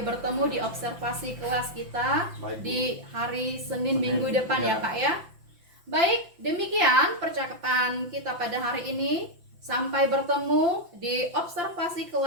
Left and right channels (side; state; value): left; late; 5.9 ms